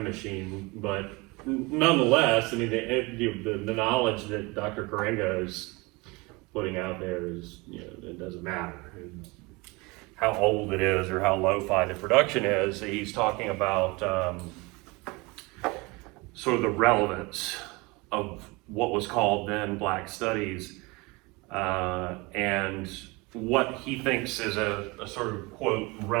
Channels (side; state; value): left; quieter; 25.3 dB